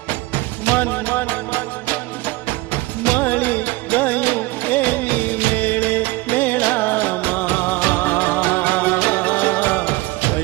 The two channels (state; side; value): quieter; left; 20.7 dB